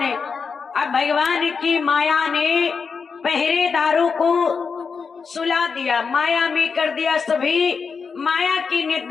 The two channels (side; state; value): right; quieter; 5.5 dB